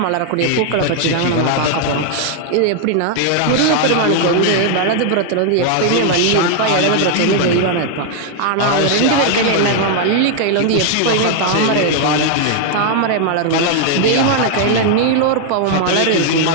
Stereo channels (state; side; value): different; both; correlation 0.00